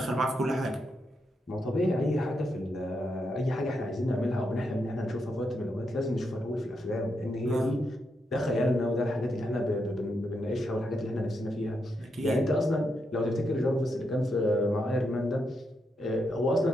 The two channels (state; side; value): normal; both; correlation 0.82